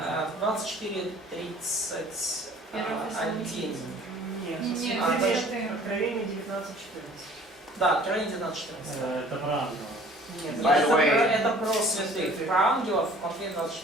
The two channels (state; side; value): normal; both; correlation 0.51